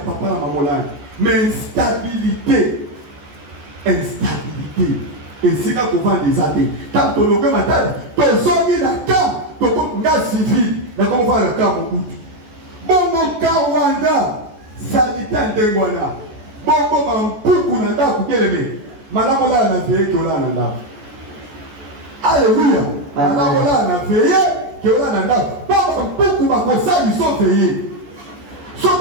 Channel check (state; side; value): late; left; 14 ms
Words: na mamola mais instabilité esika kovanda eza te ntango tolonge matali tozongi na camp tokonga civil nakomofana na camp mokutu bongo ka wanda salite ndenge wana bongo bampuku na ndako keleme malamu olala na veye ke olala na ndako. Alléluia. Malamu olala na veye ke olala na ndako po bampuku bakosali so veye